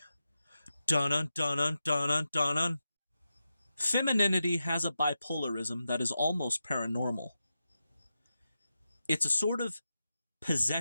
Dun-dun, dun-dun, dun-dun, dun-dun. Femininity has a bipolarism that is almost paranormal. It's a sort of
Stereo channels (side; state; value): both; inverted; correlation -0.90